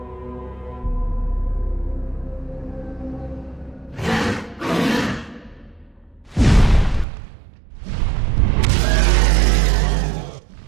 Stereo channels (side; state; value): left; drops out; at 7.1 s